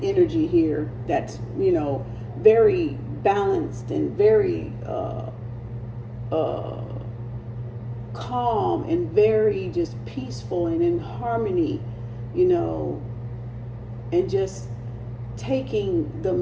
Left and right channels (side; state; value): both; identical; correlation 1.00